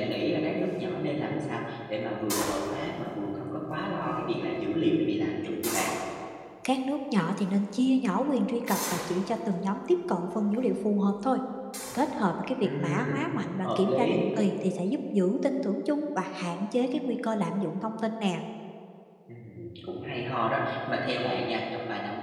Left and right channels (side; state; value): both; identical; correlation 1.00